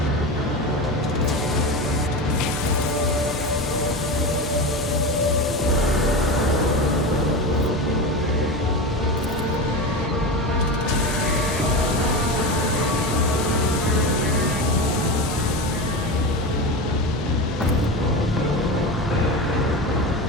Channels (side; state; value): both; normal; correlation 0.23